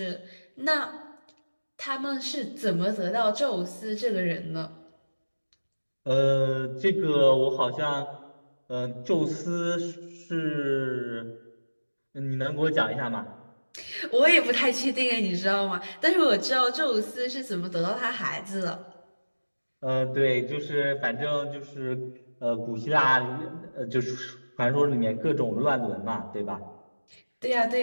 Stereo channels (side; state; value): both; inverted; correlation -1.00